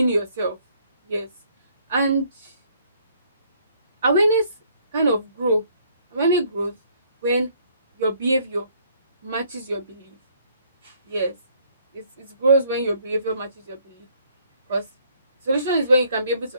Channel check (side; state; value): both; inverted; correlation -0.65